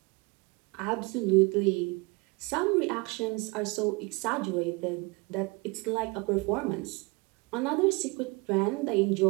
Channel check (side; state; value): left; quieter; 27.0 dB